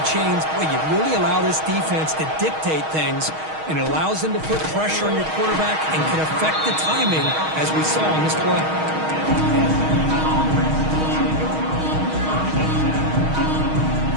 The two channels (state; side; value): late; left; 6.4 ms